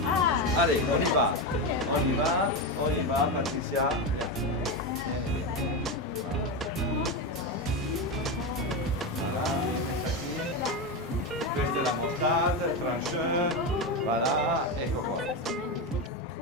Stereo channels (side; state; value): both; normal; correlation 0.14